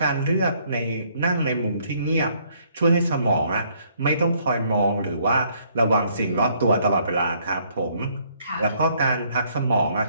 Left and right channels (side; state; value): both; inverted; correlation -0.66